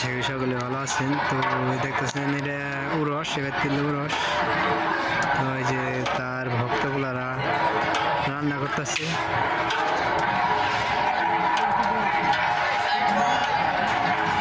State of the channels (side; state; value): both; identical; correlation 1.00